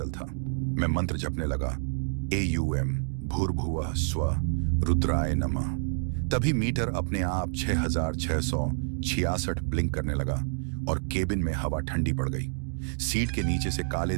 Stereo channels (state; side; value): silent; left; digital silence